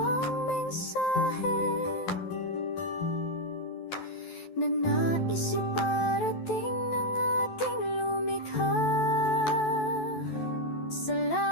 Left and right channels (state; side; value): late; right; 12 ms